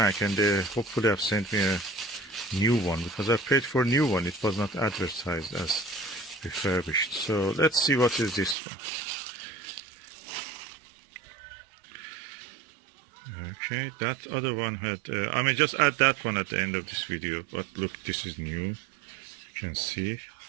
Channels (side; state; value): left; drops out; at 8.6 s